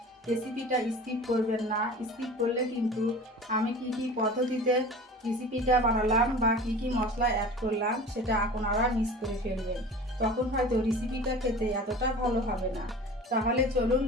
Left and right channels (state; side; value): normal; both; correlation 0.38